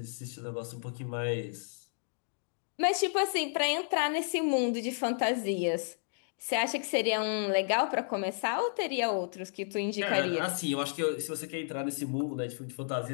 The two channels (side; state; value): right; silent; digital silence